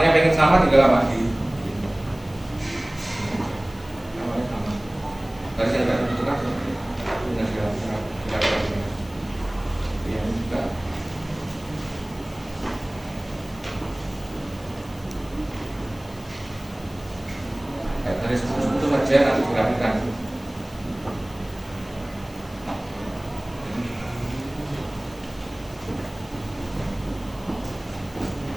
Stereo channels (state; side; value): noise; left; hiss, 23 dB below the sound